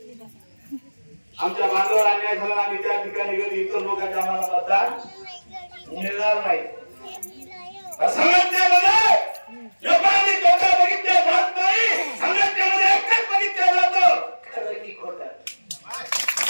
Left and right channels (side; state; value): both; inverted; correlation -1.00